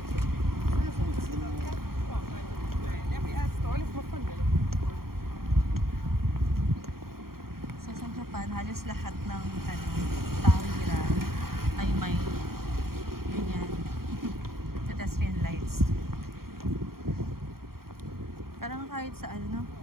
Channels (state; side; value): late; left; 0.93 ms